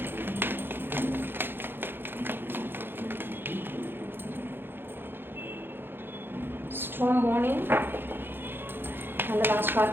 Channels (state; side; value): late; left; 0.10 ms